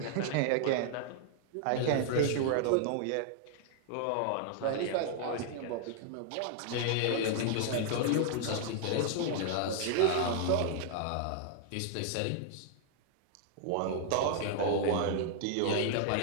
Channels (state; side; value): different; both; correlation 0.00